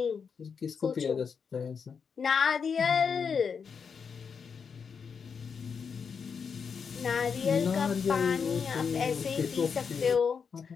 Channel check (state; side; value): quieter; right; 6.2 dB